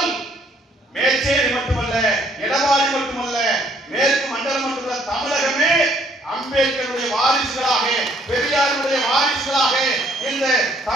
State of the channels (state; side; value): normal; both; correlation 0.64